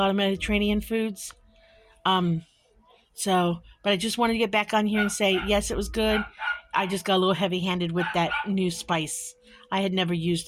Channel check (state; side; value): identical; both; correlation 1.00